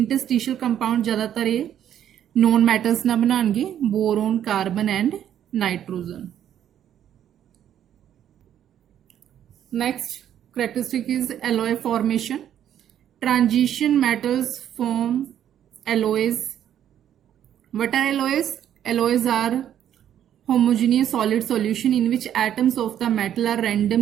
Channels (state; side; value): quieter; left; 10.3 dB